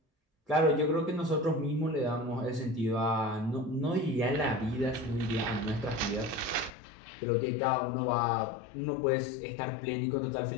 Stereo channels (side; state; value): right; drops out; at 6.7 s